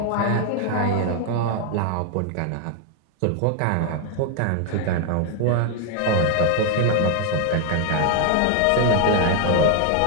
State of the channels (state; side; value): different; both; correlation 0.00